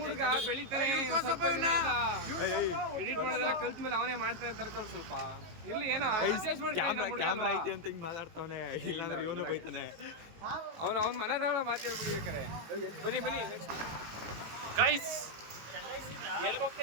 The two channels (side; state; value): left; late; 18 ms